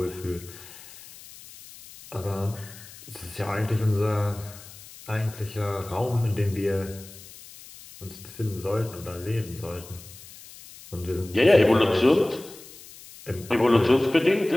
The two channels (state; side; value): noise; left; hiss, 18 dB below the sound